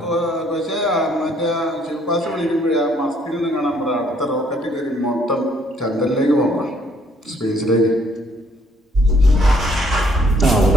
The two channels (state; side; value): normal; both; correlation 0.65